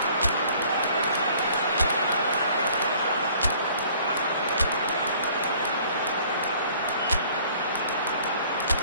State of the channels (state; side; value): inverted; both; correlation -0.55